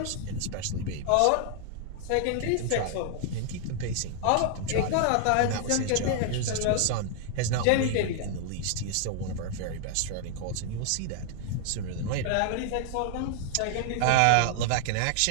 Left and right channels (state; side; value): different; both; correlation 0.00